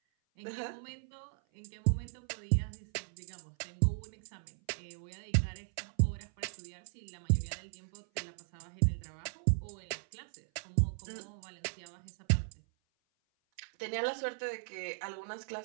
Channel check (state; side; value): silent; left; 53 dB below the other